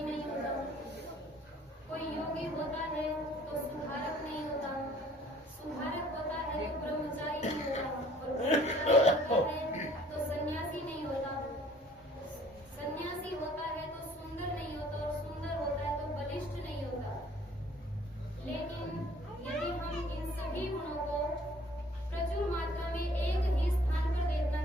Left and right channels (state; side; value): normal; both; correlation 0.56